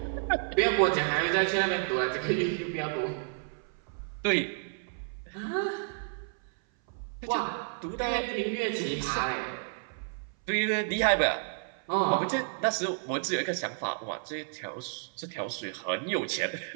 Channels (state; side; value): silent; left; 57 dB below the other